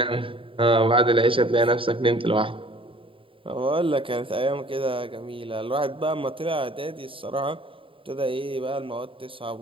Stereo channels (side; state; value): left; late; 0.25 ms